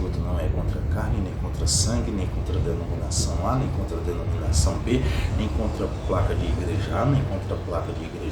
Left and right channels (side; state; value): both; identical; correlation 1.00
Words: não é contra carne, nem contra sangue, nem contra denominação A, nem contra denominação B, nem contra placa de igreja A, nem contra placa de